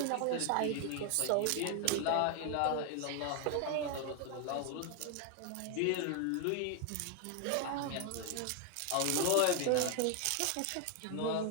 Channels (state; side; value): different; both; correlation 0.00